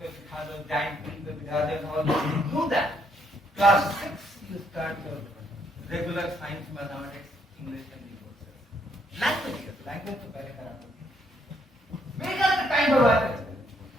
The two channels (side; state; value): both; normal; correlation 0.71